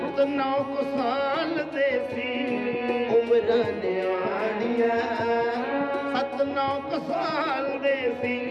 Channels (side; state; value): both; identical; correlation 1.00